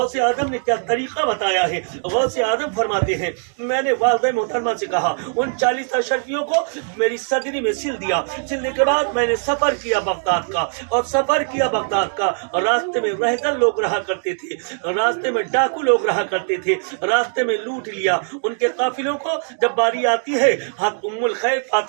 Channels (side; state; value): left; silent; digital silence